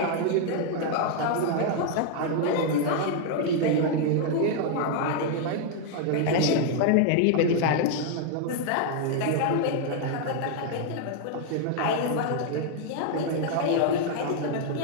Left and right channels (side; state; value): both; different; correlation 0.00